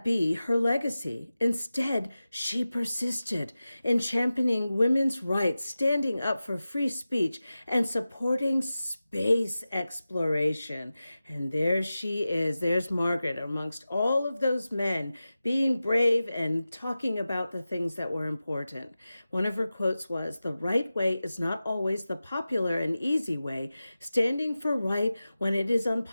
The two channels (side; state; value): both; inverted; correlation -0.95